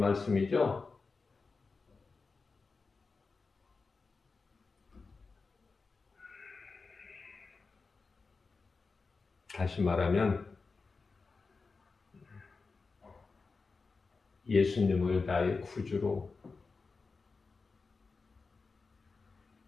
다시 말하면 예수님을 나의 구주로,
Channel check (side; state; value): right; quieter; 4.3 dB